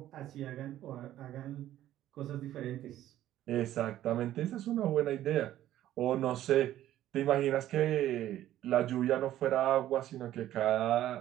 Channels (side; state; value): left; quieter; 13.0 dB